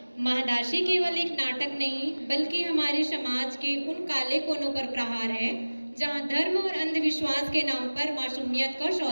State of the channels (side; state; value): both; inverted; correlation -1.00